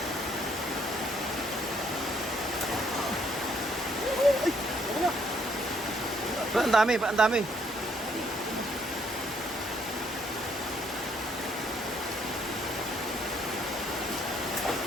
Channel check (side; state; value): both; normal; correlation 0.68